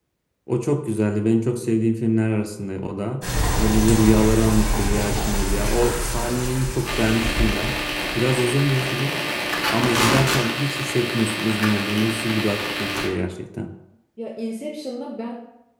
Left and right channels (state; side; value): identical; both; correlation 1.00